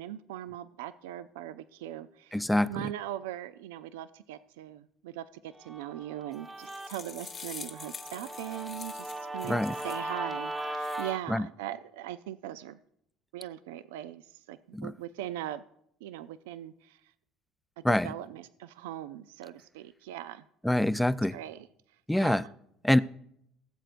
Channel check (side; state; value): both; normal; correlation 0.79